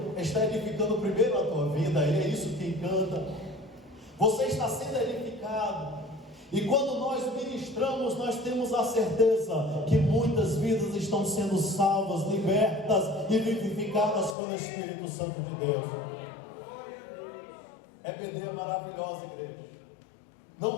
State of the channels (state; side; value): drops out; right; at 14.4 s